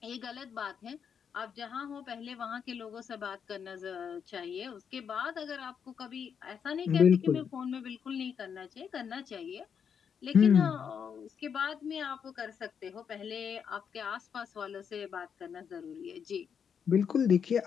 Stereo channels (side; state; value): right; quieter; 7.2 dB